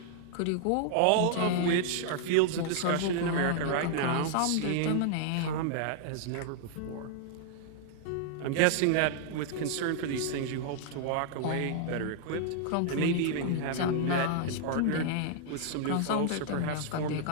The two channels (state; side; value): different; both; correlation -0.01